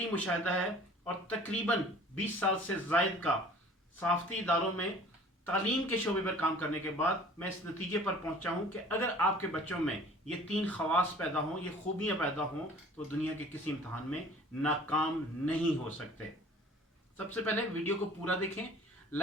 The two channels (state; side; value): normal; both; correlation 0.49